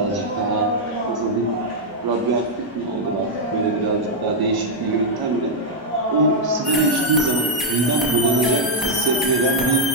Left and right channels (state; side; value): normal; both; correlation -0.02